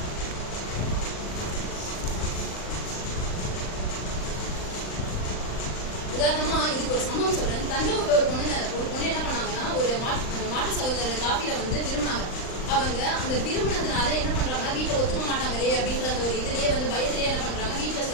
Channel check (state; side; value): late; right; 39 ms